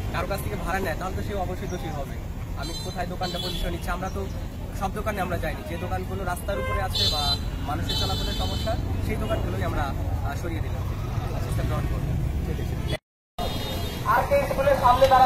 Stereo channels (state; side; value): identical; both; correlation 1.00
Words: কারো কাছ থেকে ভাড়া নেয় তাহলে তো সে অবশ্যই দোষী হবে। আমি কোথায় দোকানটা পজিশন নিচ্ছি, আমরা তো সব দোকানে আমরা যাইনি। যে দোকানগুলো রাস্তার উপরে আছে বা মানুষের চলাচলের সমস্যা, সেই দোকানগুলোই আমরা সরিয়ে দিলাম, সিস্টেম গ্রহণ করবো। আর কে স্কুলের সামনে